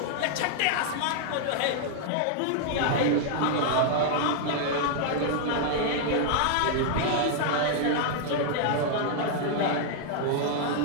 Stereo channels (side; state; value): both; different; correlation 0.00